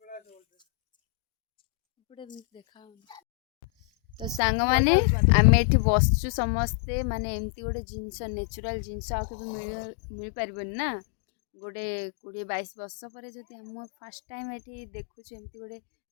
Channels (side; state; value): right; drops out; at 4.4 s